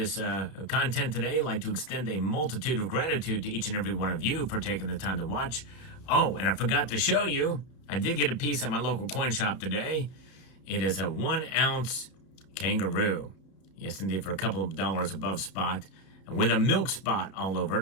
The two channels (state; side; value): late; right; 31 ms